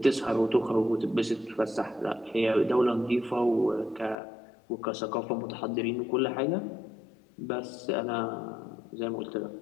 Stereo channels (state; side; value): drops out; right; at 4.2 s